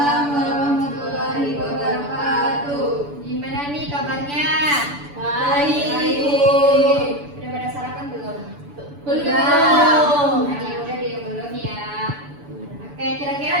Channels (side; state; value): left; late; 7.0 ms